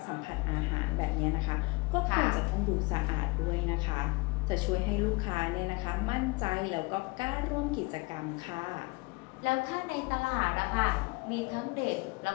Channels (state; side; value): quieter; right; 26.8 dB